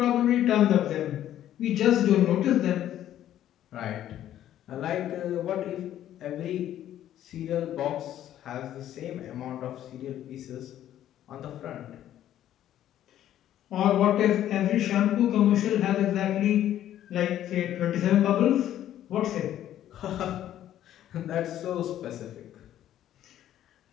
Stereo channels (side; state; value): right; quieter; 11.8 dB